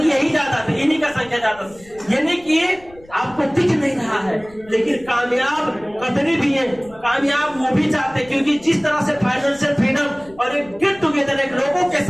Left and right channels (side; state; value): left; noise; rumble, 24 dB below the sound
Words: यही ज्यादा थे, इन्हीं का संख्या ज्यादा था। यानी कि आपको दिख नहीं रहा है, लेकिन कामयाब कतरी भी है, कामयाब वो भी चाहते, क्योंकि जिस तरह से फाइनेंशियल फ्रीडम और एक गेट टुगेदर, एक लोगों के